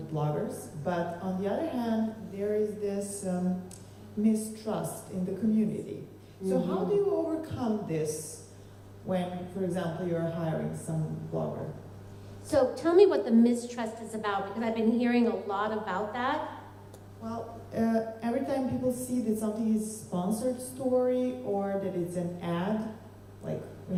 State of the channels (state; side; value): identical; both; correlation 1.00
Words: bloggers, but on the other hand, there is this mistrust in the community. So how do you overcome this when, for example, you're hiring some blogger? So tell me what the mistrust is about, because I've been hearing a lot about that. Well, every time people see that something is sponsored story or that it's an ad, like we